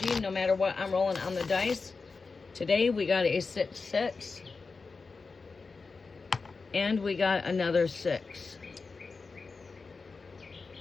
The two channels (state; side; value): quieter; right; 4.4 dB